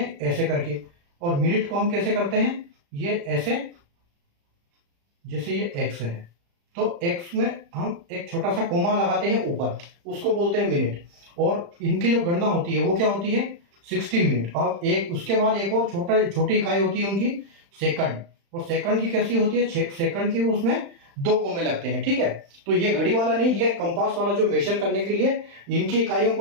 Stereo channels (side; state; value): left; late; 35 ms